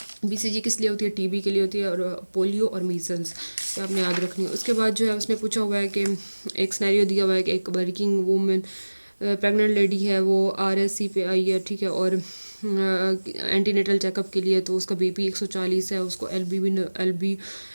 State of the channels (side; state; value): both; inverted; correlation -1.00